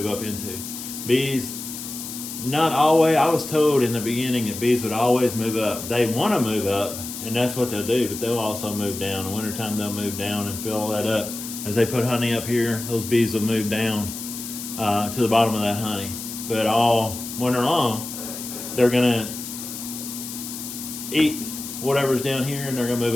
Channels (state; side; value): noise; left; hiss, 9 dB below the sound